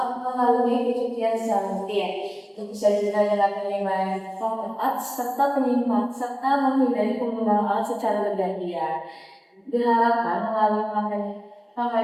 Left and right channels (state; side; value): identical; both; correlation 1.00